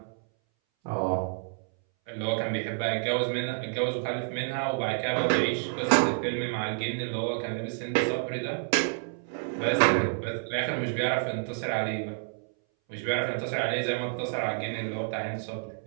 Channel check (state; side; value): silent; left; 59 dB below the other